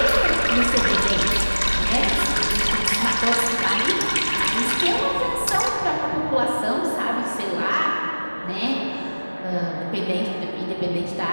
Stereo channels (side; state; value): both; inverted; correlation -1.00